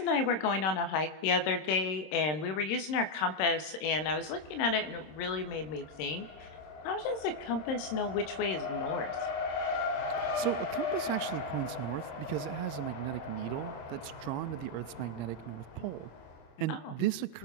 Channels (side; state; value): right; late; 26 ms